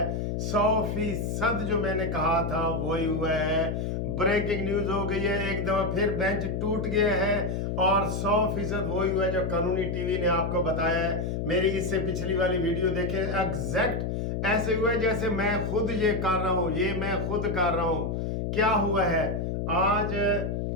100% जो मैंने कहा था वही हुआ है। ब्रेकिंग न्यूज़ हो गई है, एक दफ़ा फिर बेंच टूट गया है और 100% वही हुआ है जो कानूनी टीवी ने आपको बताया है। मेरी इससे पिछली वाली वीडियो देखें, एग्जैक्ट ऐसे हुआ है जैसे मैं खुद ये कर रहा हूँ, ये मैं खुद कर रहा हूँ। क्या हुआ है आज?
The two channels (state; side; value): noise; left; hum, 1 dB below the sound